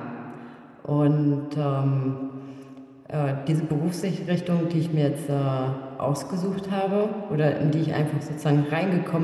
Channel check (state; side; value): identical; both; correlation 1.00